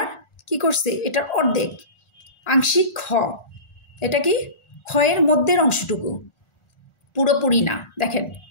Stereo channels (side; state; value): right; late; 1.4 ms